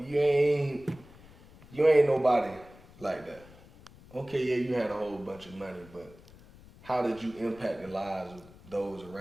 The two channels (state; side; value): noise; left; rumble, 22 dB below the sound